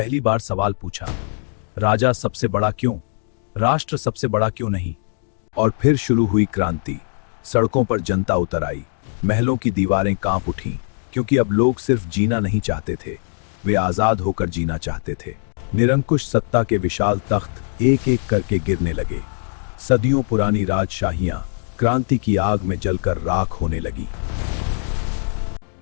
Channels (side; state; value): right; silent; digital silence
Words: बार सवाल पूछा, राजा सबसे बड़ा क्यों, राष्ट्र सबसे बड़ा क्यों नहीं? और फिर शुरू हुई क्रांति। सड़कों पर जनता उतर आई, महलों की दीवारें कांप उठीं, क्योंकि अब लोग सिर्फ जीना नहीं चाहते थे, वे आजाद होकर जीना चाहते थे। निरंकुश सत्ता के विशाल तख्त एक एक करके गिरने लगे। सदियों पुरानी राजशाहियां क्रांति की आग में जलकर राख होने लगी।